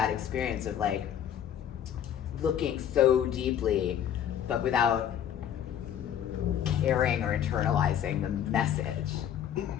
experience of like looking so deeply, but without caring or internalizing the message.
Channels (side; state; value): right; quieter; 9.8 dB